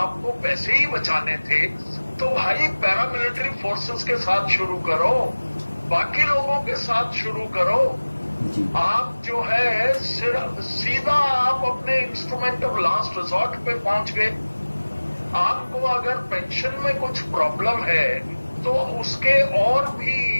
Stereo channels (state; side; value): inverted; both; correlation -1.00